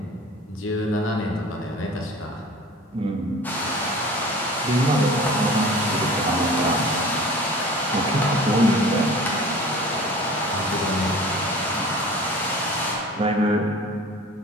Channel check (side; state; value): both; normal; correlation 0.42